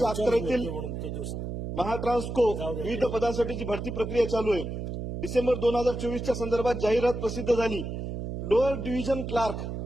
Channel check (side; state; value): right; noise; hum, 5 dB below the sound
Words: अखत्यारीतील महाट्रान्सको विविध पदांसाठीची भरती प्रक्रिया चालू आहे. डिसेंबर 2024च्या संदर्भात जाहिरात प्रसिद्ध झाली. Lower division clerk